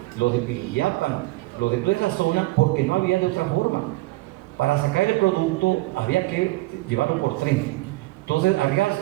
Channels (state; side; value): quieter; left; 20.8 dB